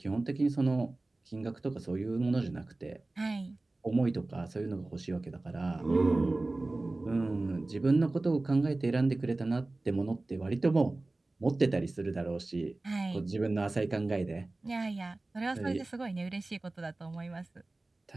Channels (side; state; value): left; quieter; 3.0 dB